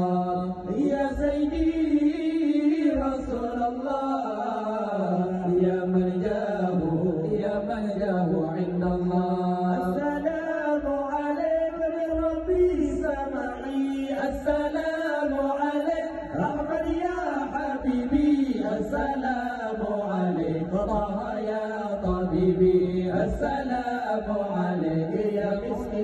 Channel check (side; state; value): both; identical; correlation 1.00